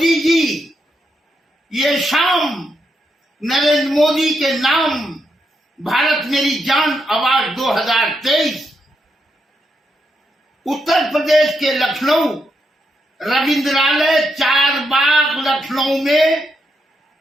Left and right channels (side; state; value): both; normal; correlation 0.81